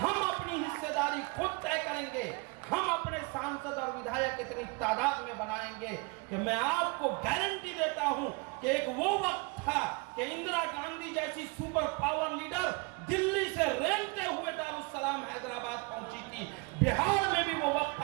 अपनी हिस्सेदारी खुद तय करेंगे। हम अपने सांसद और विधायक इतनी तादाद में बनाएंगे कि मैं आपको गारंटी देता हूं कि एक वो वक्त था कि इंदिरा गांधी जैसी सुपर पावर लीडर दिल्ली से रेंगते हुए दारुस्सलाम हैदराबाद पहुंची थी। बिहार में भी वो वक्त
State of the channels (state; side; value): quieter; left; 29.1 dB